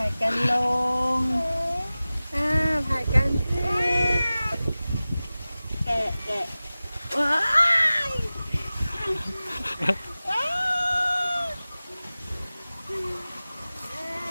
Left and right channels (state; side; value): inverted; both; correlation -0.97